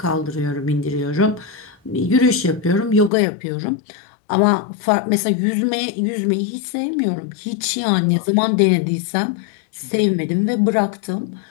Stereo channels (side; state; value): right; drops out; at 3.1 s